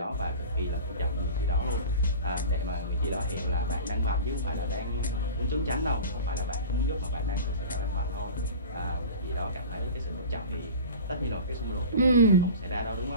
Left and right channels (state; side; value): inverted; both; correlation -0.35